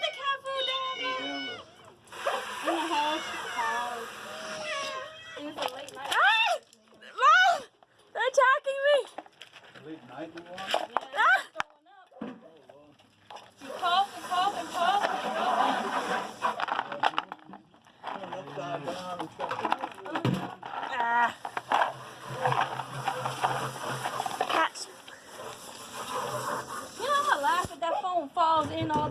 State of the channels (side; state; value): both; identical; correlation 1.00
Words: the cat food down there. In the house. It was a late night. Ah! Mom! They're attacking me! Late night you want? Yeah, it's throwing up. You cough and cough and cough. Turn upside down and stuff. Ah. Cats. You know, I laugh if that phone falls in all